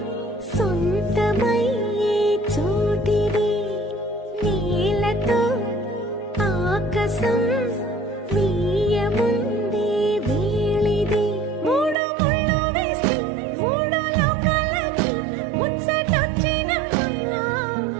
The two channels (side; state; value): left; drops out; at 12.0 s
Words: సొంతమయ్యే చోటిది, నీలతో ఆకాశం వీయముందే వేళిది, మూడు ముళ్ళు వేసి మూడు లోకాలకి ముచ్చటొచ్చినమ్మా,